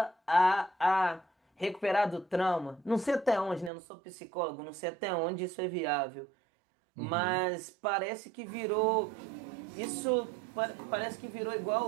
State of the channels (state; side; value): drops out; left; at 3.7 s